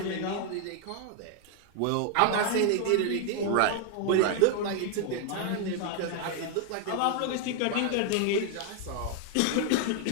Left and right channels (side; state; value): both; different; correlation 0.00